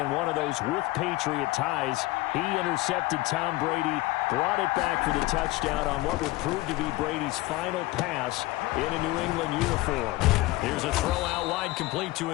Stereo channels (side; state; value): right; quieter; 19.6 dB